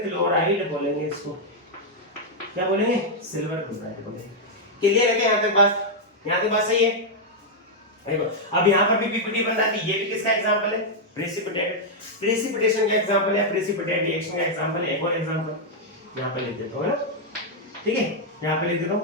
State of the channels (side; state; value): both; normal; correlation -0.03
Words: क्लोराइड बोलेंगे इसको। क्या बोलेंगे, सिल्वर क्लोराइड बोलेंगे। क्लियर है क्या, यहाँ तक बात, यहाँ तक बात सही है। देखो अब यहाँ पर भी पीपीटी बन रहा है, ये भी किसका एग्जांपल है, प्रेसिपिटेट, प्रेसिपिटेशन का एग्जांपल है, प्रेसिपिटेट रिएक्शन का एग्जांपल है। एक और एग्जांपल यहाँ पे लिख देता हूँ, है ना, ठीक है। यहाँ पे लिख देता